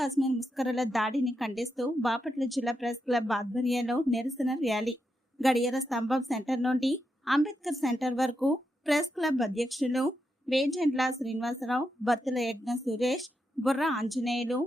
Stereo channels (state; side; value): normal; both; correlation 0.85